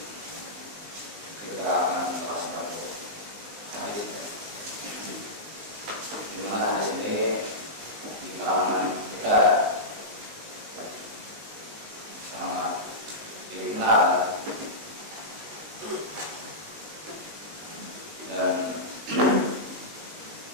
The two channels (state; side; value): late; left; 19 ms